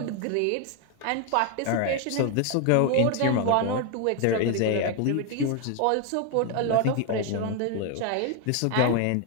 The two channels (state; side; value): different; both; correlation 0.00